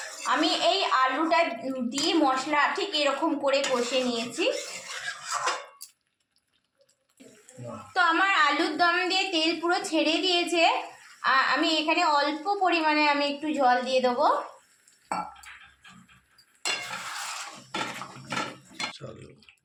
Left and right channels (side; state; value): both; identical; correlation 1.00